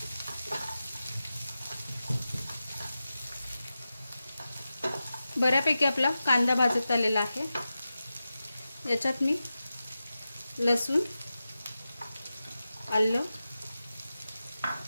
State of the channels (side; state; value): both; inverted; correlation -0.93